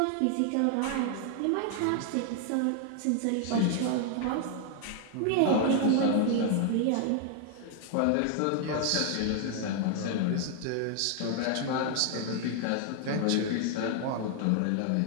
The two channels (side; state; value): both; different; correlation 0.00